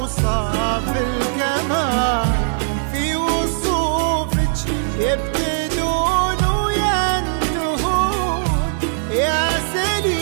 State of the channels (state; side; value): silent; left; 63 dB below the other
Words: الكمال، في وصوفك يبتدون وينتهون، يا